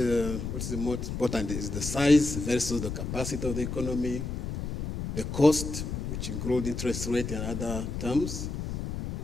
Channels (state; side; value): noise; left; rumble, 4 dB below the sound